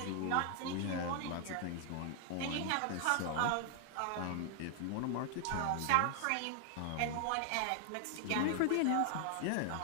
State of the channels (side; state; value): both; different; correlation 0.00